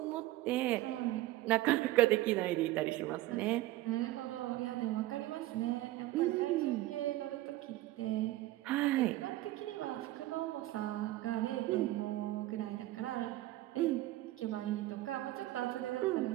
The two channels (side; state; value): left; quieter; 16.7 dB